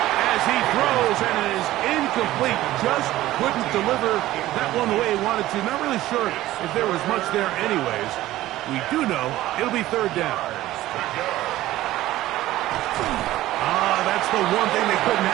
as he throws, and it is incomplete. Just couldn't deliver that one the way he wanted to. Not really sure if there was much there anyways. We do know it'll be 3rd down. That's the one thing they couldn't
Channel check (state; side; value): quieter; left; 15.5 dB